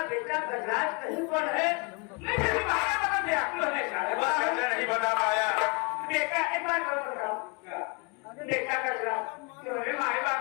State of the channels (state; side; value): quieter; right; 30.9 dB